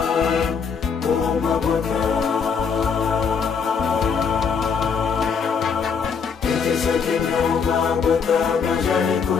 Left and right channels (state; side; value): quieter; right; 6.0 dB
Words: o mabota kitisa kimia o mabota majani